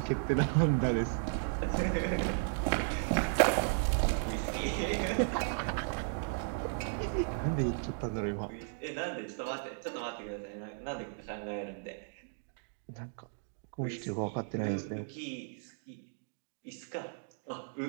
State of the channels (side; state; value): left; silent; digital silence